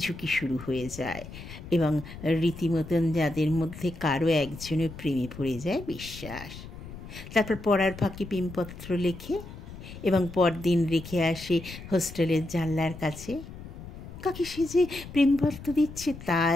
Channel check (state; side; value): noise; left; rumble, 13 dB below the sound